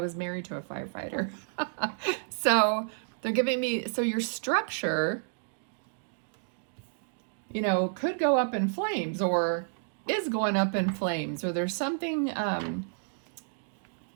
married to a firefighter. So they're giving me, so your structure, you know, could go up in flames or is going up in flames, or there's something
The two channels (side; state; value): left; silent; digital silence